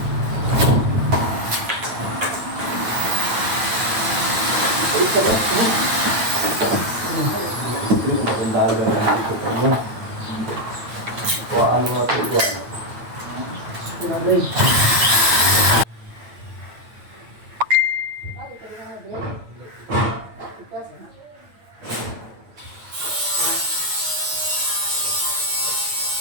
Daga na dito pa mo. Kuhaan mo ito, kuhaan.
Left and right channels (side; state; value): left; late; 8.9 ms